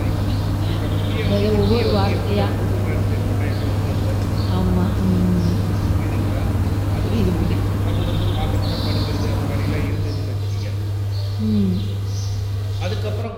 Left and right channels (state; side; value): identical; both; correlation 1.00